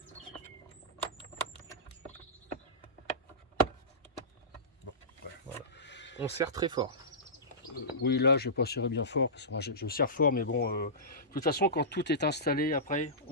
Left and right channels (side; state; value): both; normal; correlation -0.19